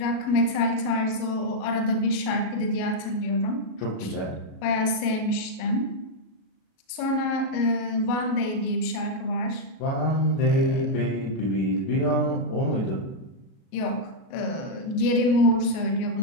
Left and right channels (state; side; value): late; right; 37 ms